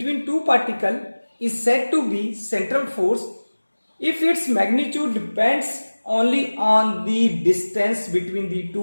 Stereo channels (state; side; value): inverted; both; correlation -1.00